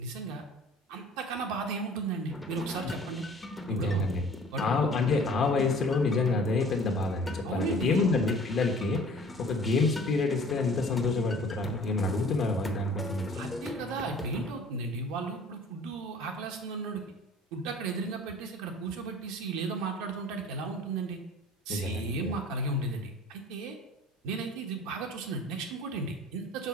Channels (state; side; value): normal; both; correlation 0.49